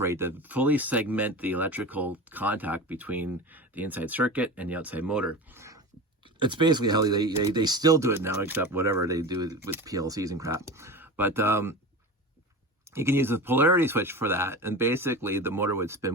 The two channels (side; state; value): both; normal; correlation 0.29